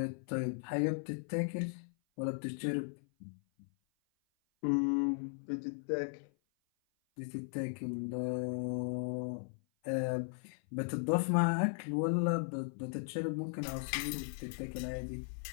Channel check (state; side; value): silent; right; 53 dB below the other